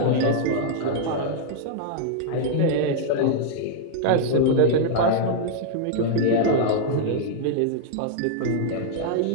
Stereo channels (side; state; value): both; different; correlation -0.01